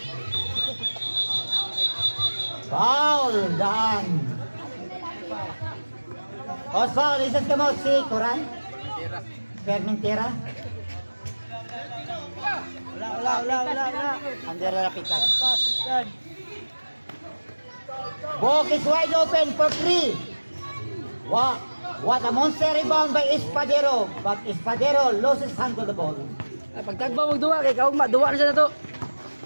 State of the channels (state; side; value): inverted; both; correlation -1.00